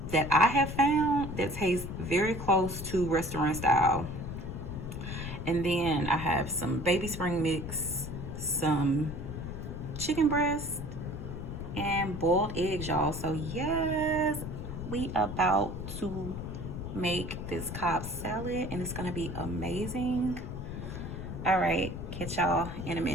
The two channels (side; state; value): left; noise; rumble, 7 dB below the sound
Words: that I have found that tastes very close to restaurant style. And then I have some baby spring mix, some chicken breast, and boiled eggs, y'all. So yes, we about to make this Cobb salad and it's gonna be amazing. All right, catch y'all in a